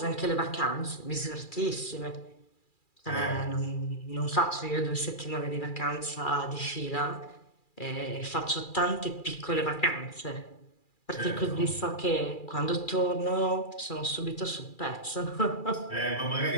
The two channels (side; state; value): right; late; 2.4 ms